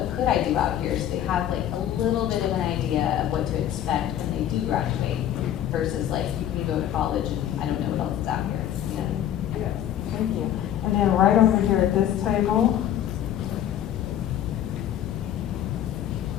could I do out here? So they have like a little bit of an idea of what to expect when they do graduate versus like you can go to college and I don't know what else is out here. You know? Yes, thank you. And then right over here at this table.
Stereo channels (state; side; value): quieter; right; 11.0 dB